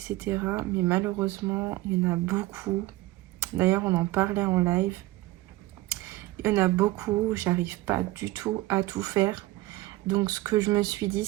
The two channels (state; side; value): quieter; left; 18.5 dB